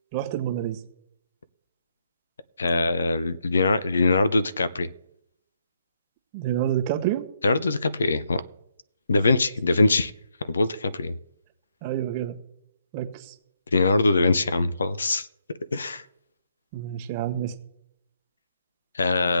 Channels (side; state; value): both; inverted; correlation -0.76